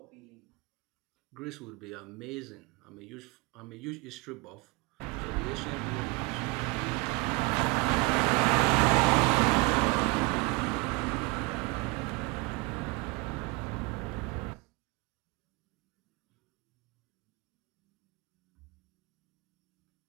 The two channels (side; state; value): left; quieter; 27.6 dB